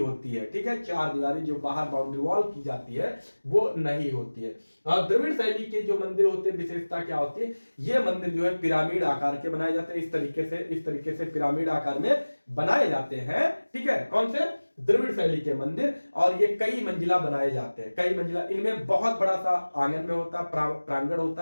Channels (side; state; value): both; inverted; correlation -1.00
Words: है, ठीक है, चार दीवारी जो बाहर बाउंड्री वॉल की जाती है वो नहीं होती है। और द्रविड़ शैली के जो मंदिर होते हैं, विशेषता क्या होती है, ये मंदिर जो है पिरामिड आकार के बनाए जाते हैं, इस तरीके से पिरामिड आकार में बनाए जाते हैं, ठीक है। कौन से, द्रविड़ शैली के मंदिर, और ये कई मंजिला बनाए जाते हैं, कई मंजिला। इनमें बहुत बड़ा सा आंगन में होता है, प्रांगण